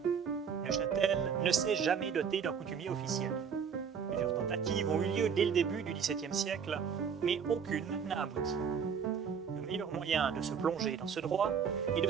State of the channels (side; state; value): left; quieter; 6.9 dB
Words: Neuchâtel ne s'est jamais doté d'un coutumier officiel. Plusieurs tentatives ont eu lieu dès le début du XVIIe siècle, mais aucune n'a abouti. Le meilleur moyen de se plonger dans ce droit est de